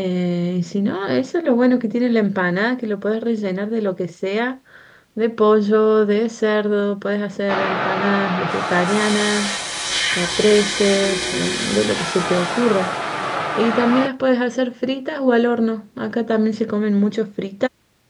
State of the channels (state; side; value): identical; both; correlation 1.00